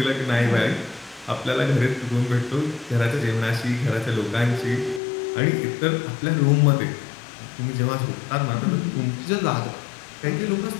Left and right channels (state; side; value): drops out; right; at 5.0 s